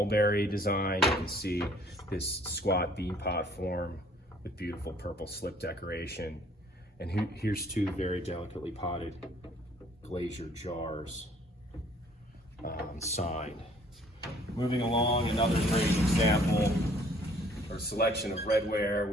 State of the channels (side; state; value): both; normal; correlation 0.59